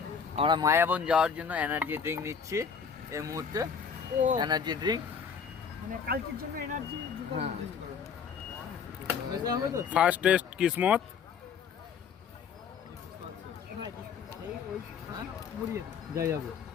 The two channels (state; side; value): quieter; right; 6.5 dB